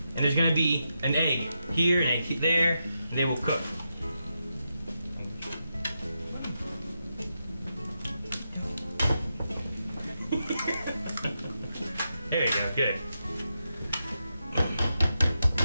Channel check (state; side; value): inverted; both; correlation -0.86